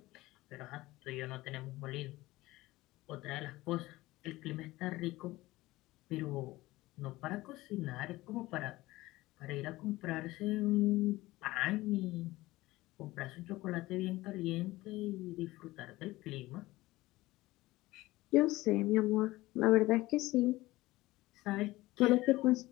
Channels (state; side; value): quieter; right; 18.6 dB